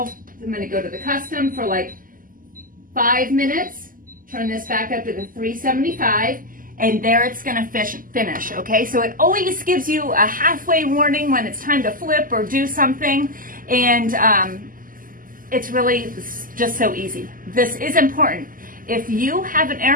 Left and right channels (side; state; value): left; late; 0.41 ms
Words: I'm gonna go to the custom for like 5 minutes. Turn this back up to the 375, and there it's gonna finish, okay? So it always gives you a halfway warning when it's time to flip or do something, and it's really just so easy. This is important. If you have an air